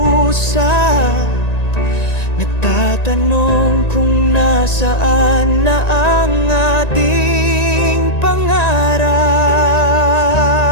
nagtatanong kung nasaan na ang ating pangarap.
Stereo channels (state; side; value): late; right; 1.9 ms